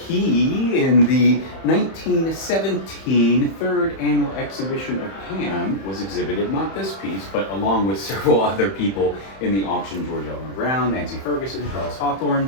in the 1917 third annual exhibition of Pam, was exhibited, not this piece, but along with several other people in the auction, George Elmer Brown, Nancy Ferguson, Charles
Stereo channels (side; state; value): right; late; 31 ms